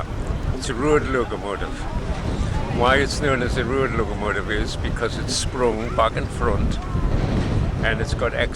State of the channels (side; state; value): both; identical; correlation 1.00